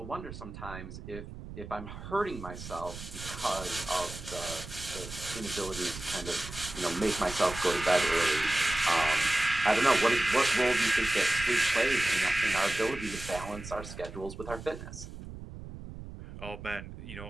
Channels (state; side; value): noise; right; rumble, 12 dB below the sound